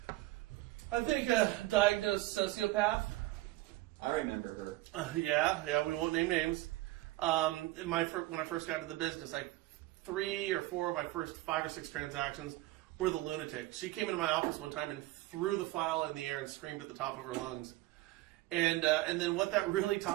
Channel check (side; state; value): left; quieter; 18.1 dB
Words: I think a diagnosed sociopath. I remember her. Yeah, we won't name names. When I first got into the business, like 3 or 4 of my first 5 or 6 transactions were the lunatic. She came into my office one time and threw the file in the air and screamed at the top of her lungs. And then what that really